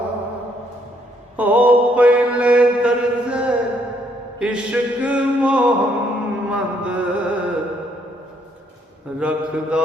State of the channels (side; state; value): both; normal; correlation 0.70